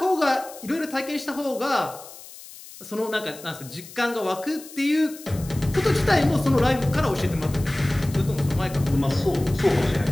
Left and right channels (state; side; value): noise; left; hiss, 17 dB below the sound